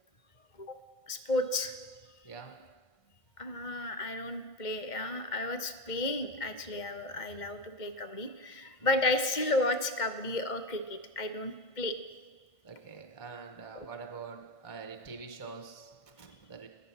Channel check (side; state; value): right; late; 1.5 ms